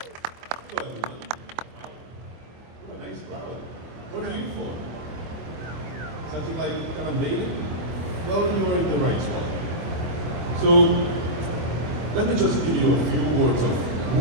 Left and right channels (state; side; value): late; left; 25 ms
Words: Nice crowd. What are you for? Something like kind of Maney? Well, you're in the right spot. So, let me just give you a few words of who